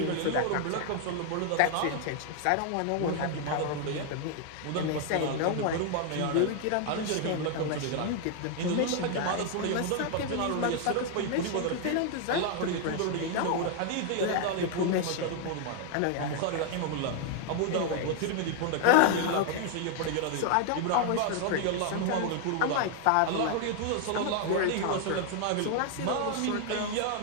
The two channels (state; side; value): different; both; correlation 0.00